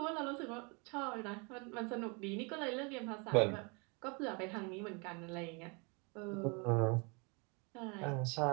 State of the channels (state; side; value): quieter; left; 31.8 dB